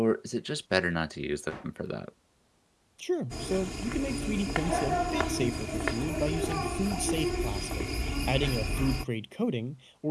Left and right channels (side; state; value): both; identical; correlation 1.00